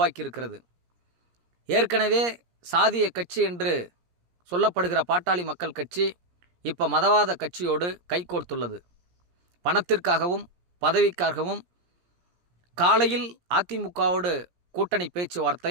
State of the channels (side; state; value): left; late; 17 ms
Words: ஏற்கனவே சாதிய கட்சி என்று சொல்லப்படுகிற பாட்டாளி மக்கள் கட்சி இப்போ மதவாத கட்சியோடு கைகோர்த்துள்ளது. பணத்திற்காகவும் பதவிக்காகவும் காலையில் அதிமுகவோடு கூட்டணி